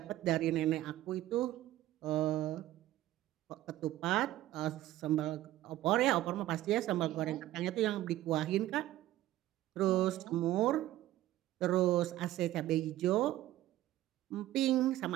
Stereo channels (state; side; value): quieter; left; 14.6 dB